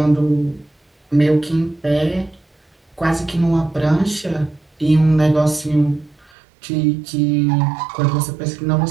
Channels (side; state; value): left; drops out; at 6.3 s